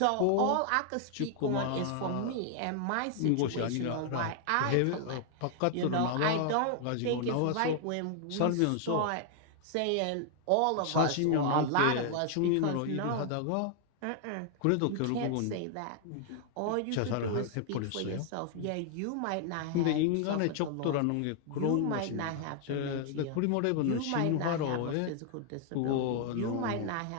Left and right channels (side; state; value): both; different; correlation 0.00